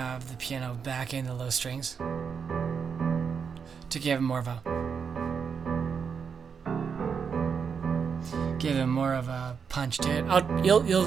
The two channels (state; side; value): quieter; left; 6.4 dB